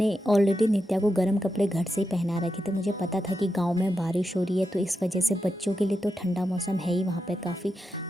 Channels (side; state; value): both; normal; correlation 0.88